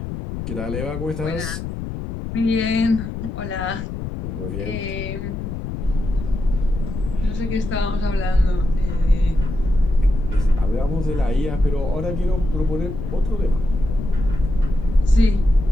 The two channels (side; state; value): left; noise; rumble, 6 dB below the sound